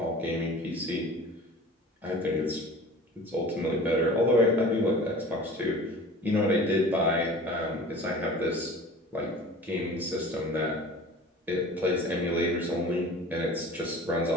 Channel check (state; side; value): normal; both; correlation 0.41